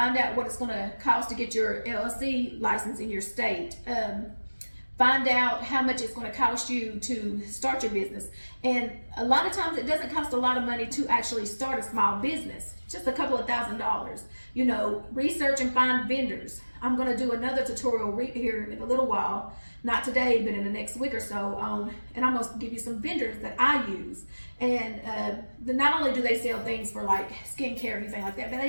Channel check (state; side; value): inverted; both; correlation -1.00